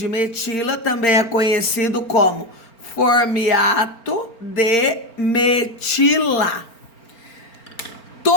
metila também é conhecido como formiato de metila.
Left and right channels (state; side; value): late; right; 4.4 ms